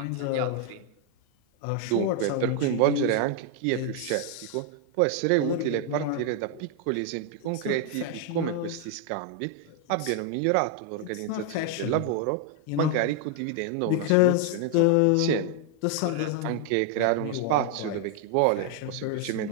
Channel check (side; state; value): both; different; correlation 0.00